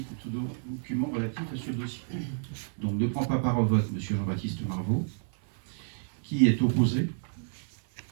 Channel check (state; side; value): silent; left; 55 dB below the other